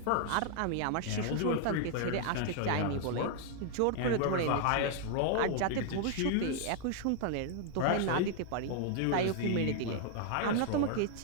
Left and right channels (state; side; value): different; both; correlation 0.00